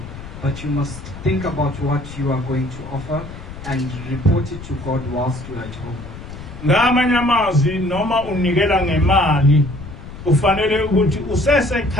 But you must think about what you are going to offer and report it to God whilst you are at home. Ngamanye amazwi noma unikela ngemali ufanele ukuthi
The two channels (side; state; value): left; noise; rumble, 13 dB below the sound